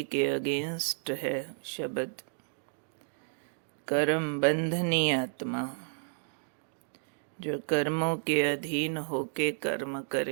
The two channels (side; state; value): left; silent; digital silence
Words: के अगेंस्ट है शब्द कर्म बंधनी आत्मा, जो कर्मों के अधीन होके कर्म